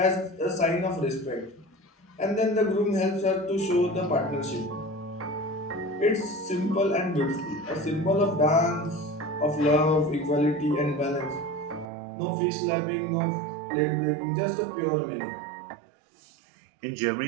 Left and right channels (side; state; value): left; drops out; at 11.9 s